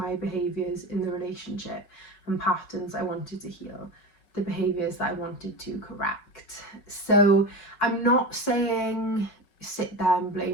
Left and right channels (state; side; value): late; right; 5.4 ms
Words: behaviours in the relationship and patterns I wanted to heal, the behaviours that I wanted to correct. So I'm not saying sit there and